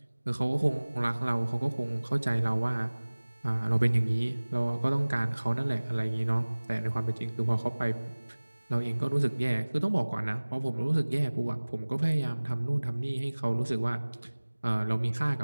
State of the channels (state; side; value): inverted; both; correlation -1.00